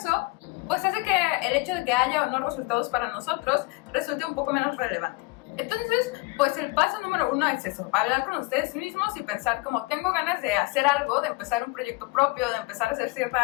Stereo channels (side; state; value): right; quieter; 23.6 dB